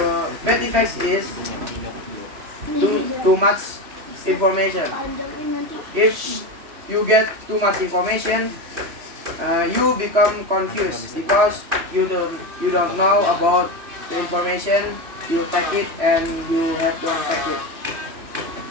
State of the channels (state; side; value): late; left; 3.1 ms